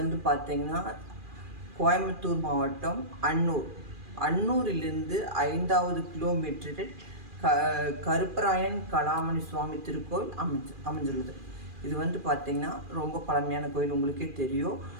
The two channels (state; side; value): late; left; 2.4 ms